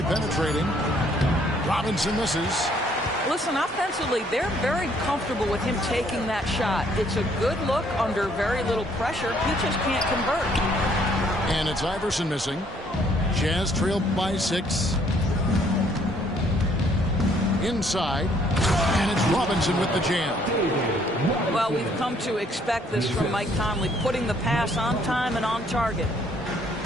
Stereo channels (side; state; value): both; normal; correlation 0.64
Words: penetrating. Robinson misses. Listen, offensively, they're very comfortable with him taking that shot. It's a good look under very little pressure. He just can't convert. And it's Iverson missing. Jazz trail by 6. Inside, and it's Robinson with the jam. Well, we've come to expect this from Mike Conley, putting the pass on time and on target.